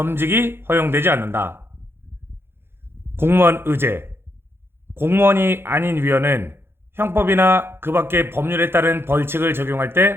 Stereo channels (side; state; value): left; late; 0.11 ms